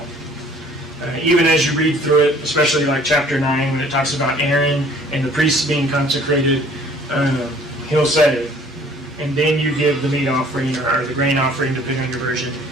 Even as you read through it, especially like chapter 9, when it talks about Aaron and the priests being consecrated, he'll say, and then you give the meat offering or the grain offering, depending on your version,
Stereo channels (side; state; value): both; normal; correlation 0.55